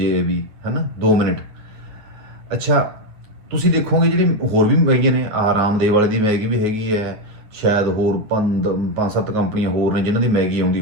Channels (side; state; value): left; late; 9.5 ms